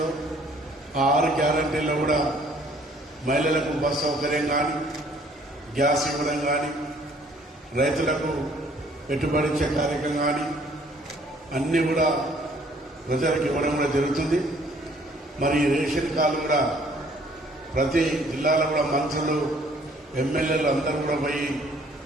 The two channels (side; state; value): both; normal; correlation 0.60